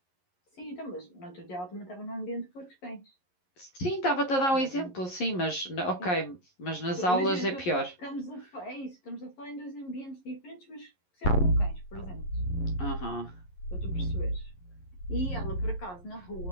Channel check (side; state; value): right; late; 11 ms